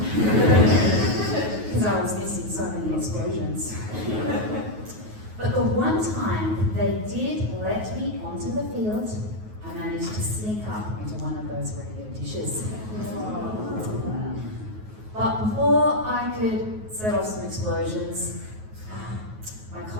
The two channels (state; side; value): late; left; 9.4 ms